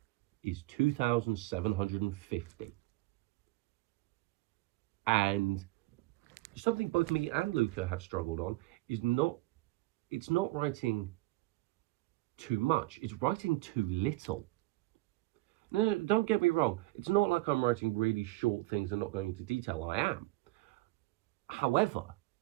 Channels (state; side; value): quieter; left; 19.3 dB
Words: is 2,750. And something both me and Luca have struggled on is it's not writing too much, it's writing too little. No, don't get me wrong. It's not like I'm writing really short things and not going into detail. I am. However,